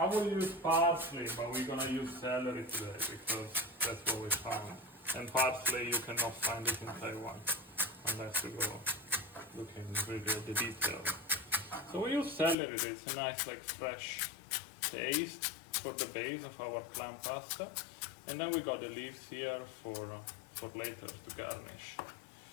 will use parsley, but we're gonna use celery today because that's what we found. And parsley you cannot find it in Taiwan unless you go looking really at the details. So we use celery. It's a nice like fresh taste for the base of our clam pasta, and then we got the leaves here for later to garnish.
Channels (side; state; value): right; drops out; at 12.6 s